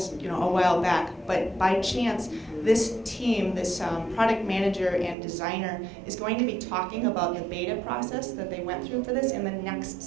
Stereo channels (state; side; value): drops out; left; at 5.2 s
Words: a while back. But by chance, this team, this product manager and designer, is going to be talking about the beta process that they went through for this in the next